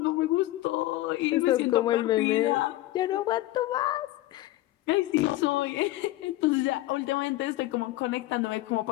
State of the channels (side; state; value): right; quieter; 16.5 dB